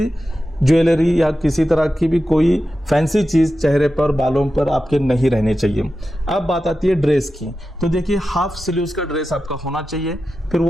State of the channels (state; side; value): normal; both; correlation 0.92